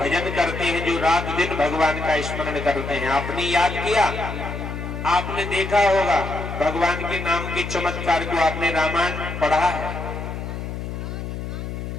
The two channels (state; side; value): noise; left; hum, 6 dB below the sound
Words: करते हैं, जो रात दिन भगवान का स्मरण करते हैं। आपने याद किया, आपने देखा होगा भगवान के नाम के चमत्कार को, आपने रामायण पढ़ा है।